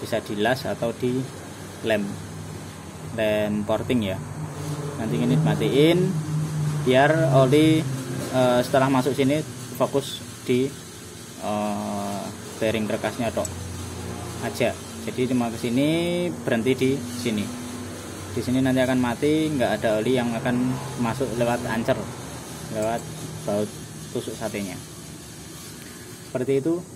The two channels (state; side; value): identical; both; correlation 1.00